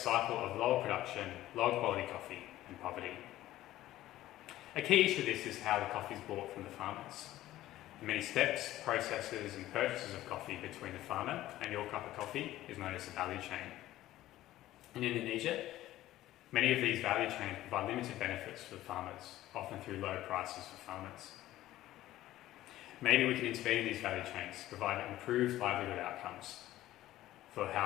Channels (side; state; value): right; quieter; 14.9 dB